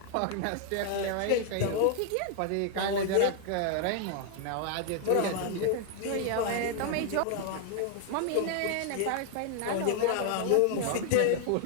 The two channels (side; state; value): both; different; correlation 0.00